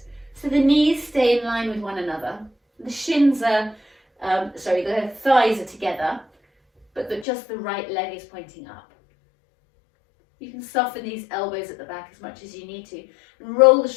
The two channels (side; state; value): right; drops out; at 7.2 s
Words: So the knees stay in line with one another. The shins are, the thighs are together, but just the right leg is pointing up. You can soften these elbows at the back as much as you need to, and roll the